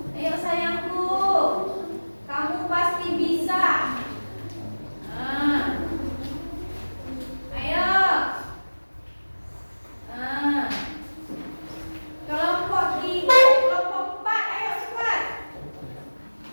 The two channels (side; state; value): both; inverted; correlation -1.00